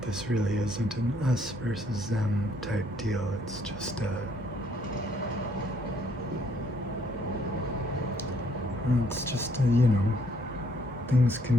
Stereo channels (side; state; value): both; normal; correlation 0.67